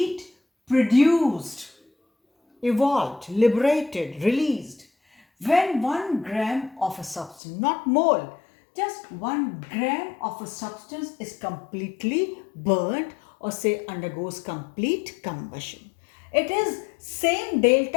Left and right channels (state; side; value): drops out; right; at 7.4 s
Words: produced, evolved, liberated, released when 1 gram of a substance, not mole, just 1 gram of a substance is completely burnt or say undergoes complete combustion. It is same